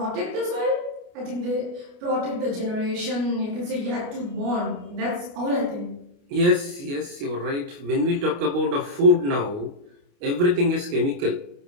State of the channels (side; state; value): left; late; 29 ms